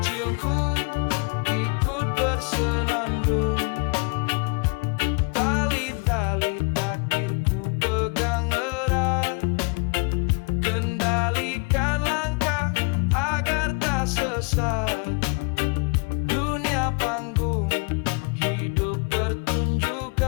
ikut bersenandung. Tali-tali takdirku pegang erat, kendalikan langkah agar tak sesat. Dunia panggung, hidup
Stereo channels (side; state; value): right; quieter; 32.6 dB